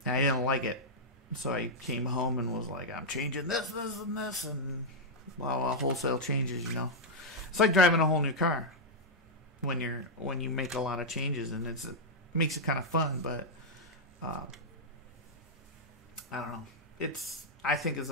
and I didn't like it. So I came home and was like, I'm changing this, and this, and wholesale changes, It's like driving a whole new car when you make a lot of changes, and it makes it kind of fun, but I don't know. I think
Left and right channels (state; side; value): normal; both; correlation -0.05